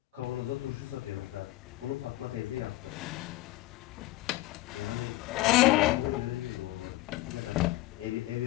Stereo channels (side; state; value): right; quieter; 17.5 dB